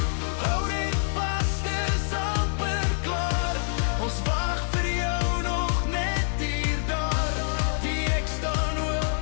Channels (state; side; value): silent; right; digital silence